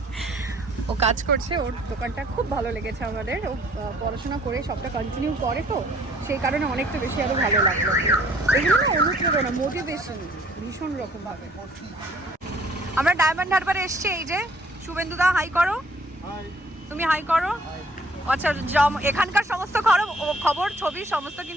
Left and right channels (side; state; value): both; normal; correlation 0.59